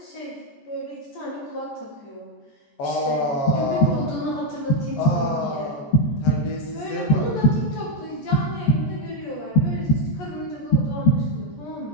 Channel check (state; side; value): late; right; 14 ms